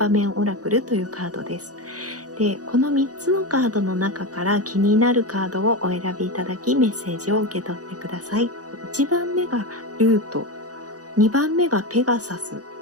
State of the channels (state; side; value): late; left; 0.67 ms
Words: 面オラクルというカードです。で、この3つのカードの中から気になるカードをお選びいただき、メッセージを受け取ってください。1番目がルート、2番目がペガサス、